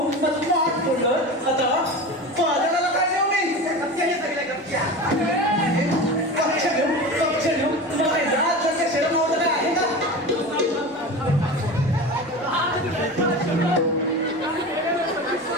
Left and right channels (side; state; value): both; normal; correlation 0.30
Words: स्मार्ट फोल्डर. आता बाजाराला काय देऊ मी? गपच्या हे सगळ्या गपच्या. कक्ष घेऊ. तुला काय जात करते शरम नव्हतं काय आहे का?